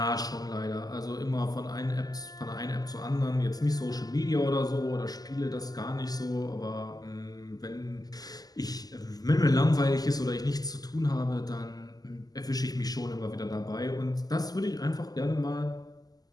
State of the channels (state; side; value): late; right; 0.18 ms